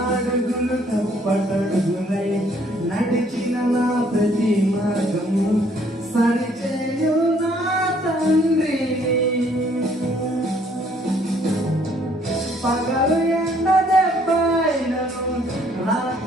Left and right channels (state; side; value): normal; both; correlation 0.63